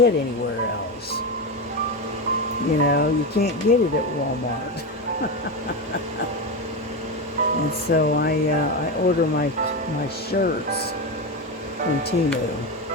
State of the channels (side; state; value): both; normal; correlation 0.16